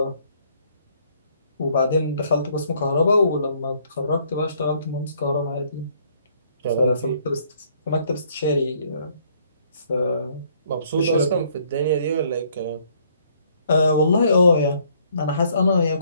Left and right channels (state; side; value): inverted; both; correlation -0.65